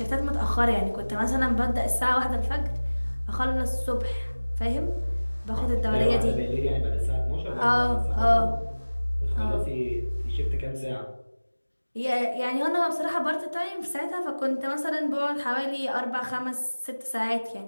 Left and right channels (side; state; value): both; inverted; correlation -1.00